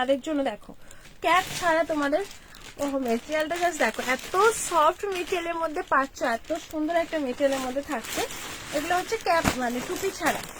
জন্য দেখো, ক্যাপ ছাড়া তোমাদের মেটেরিয়ালটা জাস্ট দেখো, এত সফট মেটেরিয়ালের মধ্যে পাচ্ছ, এত সুন্দর একটা মেটেরিয়ালের মধ্যে থাকছে। এগুলো হচ্ছে ক্যাপ মানে টুপি ছাড়া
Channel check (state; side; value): identical; both; correlation 1.00